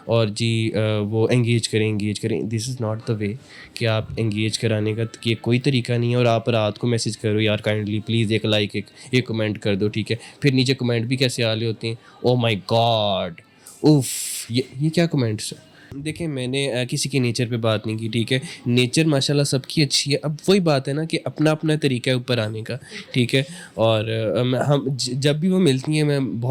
और जी वो एंगेज करें। This is not the way कि आप एंगेज कराने का ये कोई तरीका नहीं है। और आप रात को मैसेज करो, यार काइंडली प्लीज़ एक लाइक एक कमेंट कर दो, ठीक है। फिर नीचे कमेंट भी कैसे आ रहे होते हैं, ओ माई गॉड, उफ़, ये क्या कमेंट्स हैं। देखिए मैंने किसी के नेचर पे बात नहीं की, ठीक है। नेचर माशाल्लाह सबकी अच्छी है। अब वही बात है ना कि अपना अपना तरीका है ऊपर आने का, ठीक है। और जब भी वो मिलती हैं मैं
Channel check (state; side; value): identical; both; correlation 1.00